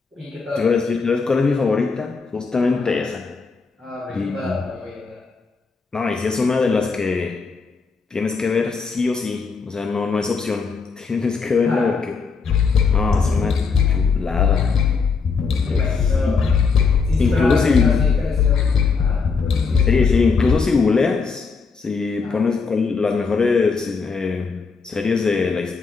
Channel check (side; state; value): right; quieter; 5.0 dB